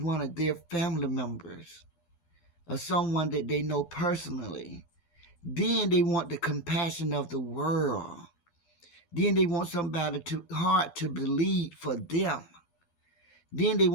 one of their family members or someone that they know personally. Then they want the compassion of the world. Then they want somebody hard to believe for them. Then they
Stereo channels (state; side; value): late; right; 12 ms